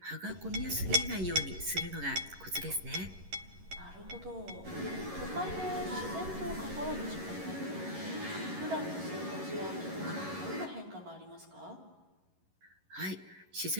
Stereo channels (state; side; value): late; left; 11 ms